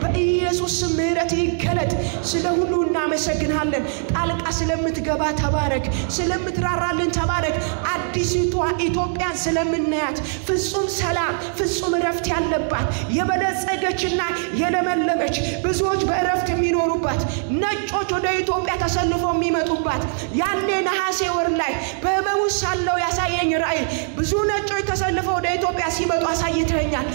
በኢየሱስ ምህረት ይገለጥ። ስለ ሁሉ እናመሰግናለን። ጣልቃ ስለምትገባ ተባረክ፣ ስለምትራራልን ተባረክ። አዲሲቷ ኢትዮጵያን ስለምናያት ፍጹም ሰላም፣ ፍጹም እረፍት ያለባት የበለጸገችና የለመለመች ብዙዎች በእረፍት የሚኖሩባት፣ ነጮች ወደ ኢትዮጵያ ተሰልፈው የሚመጡባት። ያኔ ነሐሴ ወር ላይ በህመሙ ሳለው ያሳየኝ ራእይ ብዙ ነጮች ተሰልፈው ወደ ኢትዮጵያ ሲመጡ አሳይተኛል።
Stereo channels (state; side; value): silent; left; 64 dB below the other